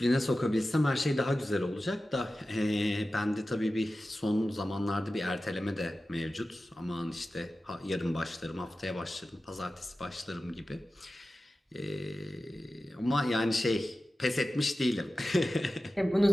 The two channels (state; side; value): normal; both; correlation 0.94